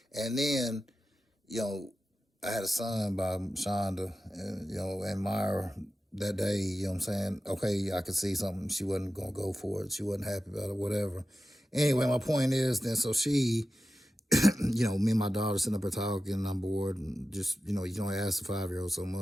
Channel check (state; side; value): normal; both; correlation 0.93